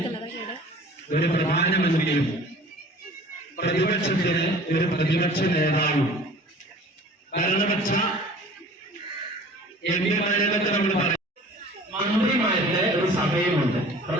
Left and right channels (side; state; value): both; normal; correlation 0.45